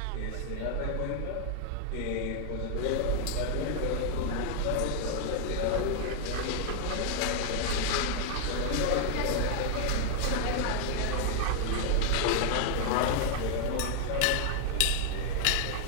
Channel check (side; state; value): both; different; correlation 0.00